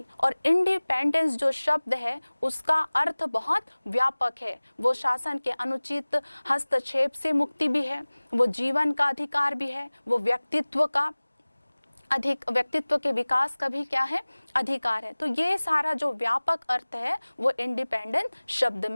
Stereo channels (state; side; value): inverted; both; correlation -1.00